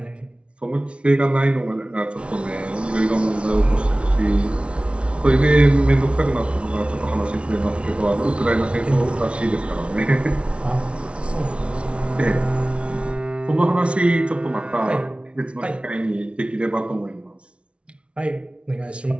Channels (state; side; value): late; left; 0.060 ms